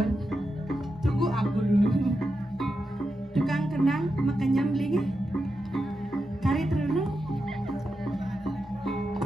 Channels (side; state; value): both; normal; correlation 0.88